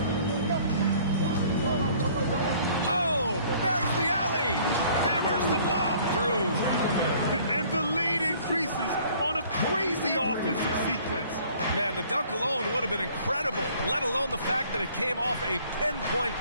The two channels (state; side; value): inverted; both; correlation -0.55